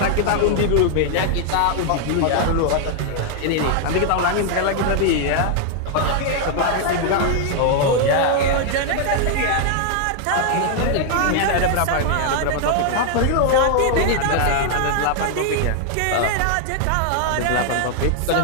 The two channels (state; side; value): different; both; correlation 0.00